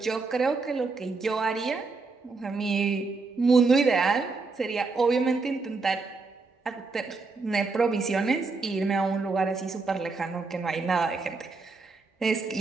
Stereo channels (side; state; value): left; quieter; 4.1 dB